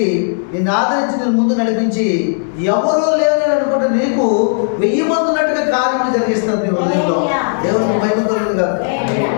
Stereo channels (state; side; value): silent; right; digital silence